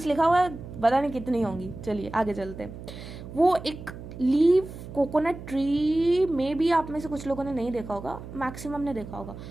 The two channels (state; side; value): noise; right; hum, 12 dB below the sound